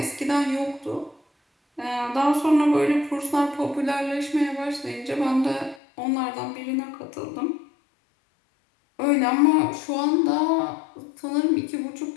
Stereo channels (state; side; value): drops out; right; at 5.8 s